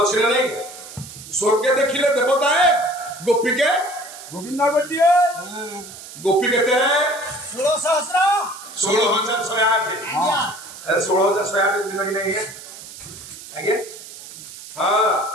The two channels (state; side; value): noise; right; hiss, 15 dB below the sound